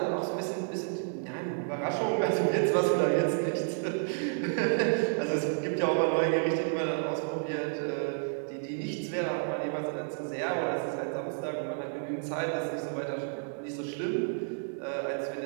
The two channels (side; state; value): left; silent; digital silence